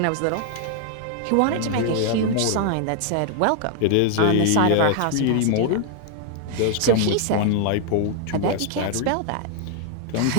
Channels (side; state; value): both; different; correlation 0.00